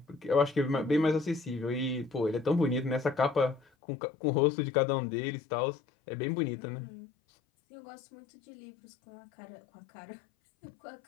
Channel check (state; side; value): drops out; right; at 3.7 s